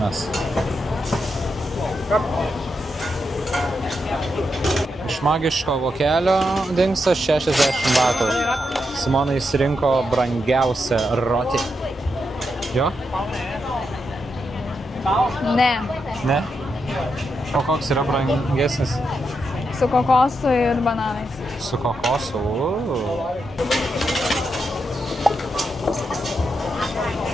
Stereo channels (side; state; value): both; normal; correlation 0.84